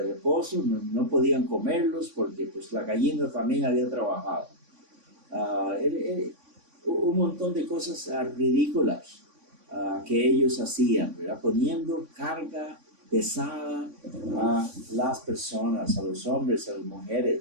reposo, no podían comerlos porque pues la gallina también había trabajado. Un montón de cosas ridículas que ellos hacían, ¿verdad? Poniendo carga pesada a las personas, a los hombres, a las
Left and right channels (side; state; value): left; late; 3.5 ms